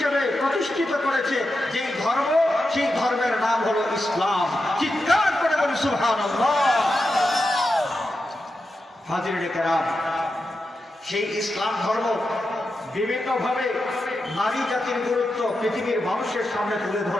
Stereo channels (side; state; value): both; normal; correlation 0.88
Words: প্রতিষ্ঠিত করেছে যেই ধর্ম, সেই ধর্মের নাম হলো ইসলাম। চিৎকার করে বলি সুবহানাল্লাহ। হাজিরিনে কেরাম, সেই ইসলাম ধর্ম বিভিন্নভাবে নারী জাতির গুরুত্ব পৃথিবীর মানুষের সামনে তুলে